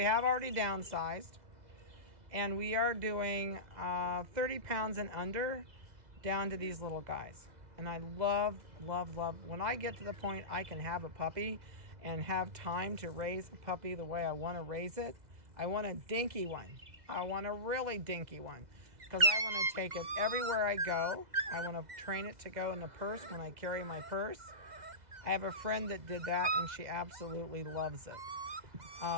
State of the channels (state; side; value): late; left; 2.0 ms